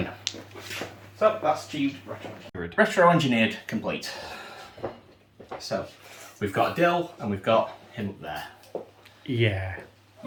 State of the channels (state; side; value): identical; both; correlation 1.00